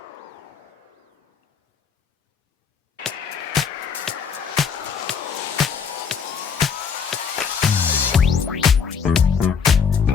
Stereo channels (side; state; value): right; quieter; 6.4 dB